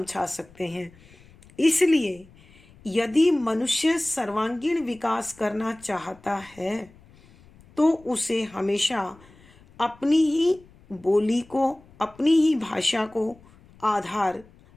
सकते हैं। इसलिए यदि मनुष्य सर्वांगीण विकास करना चाहता है तो उसे हमेशा अपनी ही बोली को, अपनी ही भाषा को आधार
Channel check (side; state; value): left; noise; rumble, 26 dB below the sound